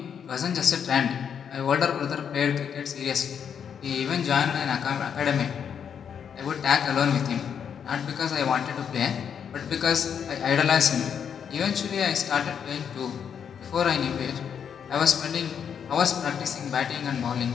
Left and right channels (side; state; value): right; quieter; 7.7 dB